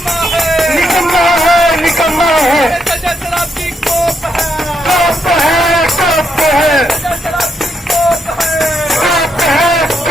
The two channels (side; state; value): both; normal; correlation 0.78